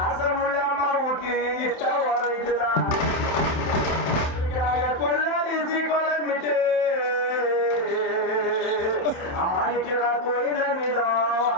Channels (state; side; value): late; right; 27 ms